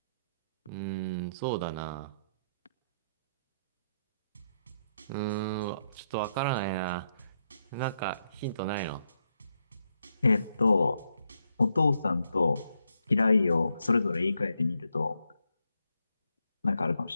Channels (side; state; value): both; inverted; correlation -0.80